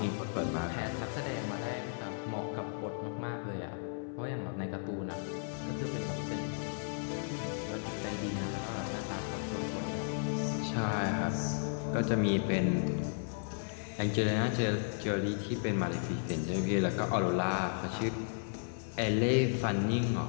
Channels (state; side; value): silent; right; 55 dB below the other